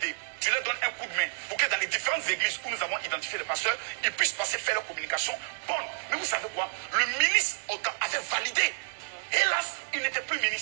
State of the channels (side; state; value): left; silent; 58 dB below the other